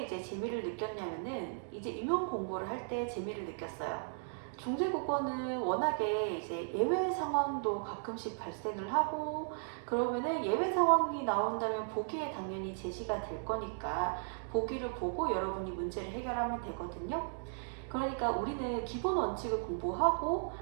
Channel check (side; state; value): left; silent; digital silence